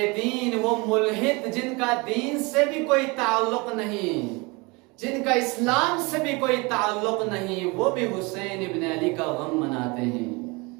دین، وہ ملحد جن کا دین سے بھی کوئی تعلق نہیں، جن کا اسلام سے بھی کوئی تعلق نہیں، وہ بھی حسین ابن علی کا غم مناتے ہیں۔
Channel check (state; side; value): quieter; left; 26.9 dB